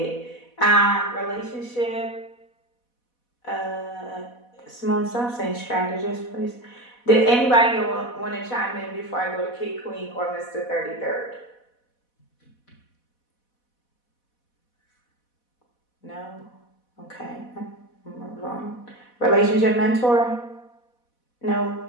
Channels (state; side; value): late; right; 4.1 ms